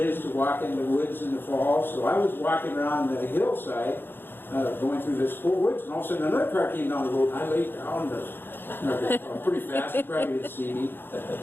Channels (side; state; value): right; late; 0.10 ms